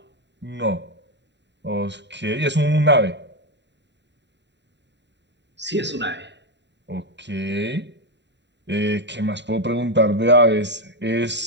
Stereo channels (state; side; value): late; left; 0.52 ms